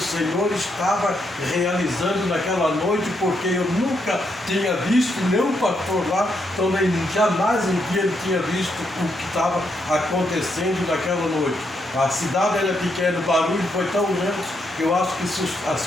Senhor estava realizando naquela noite, porque eu nunca tinha visto, nem o pastor lá, também jamais um dia ele tinha visto o que estava acontecendo naquela noite. A cidade era pequena, o barulho foi tão grande que eu acho que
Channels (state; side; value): normal; both; correlation 0.78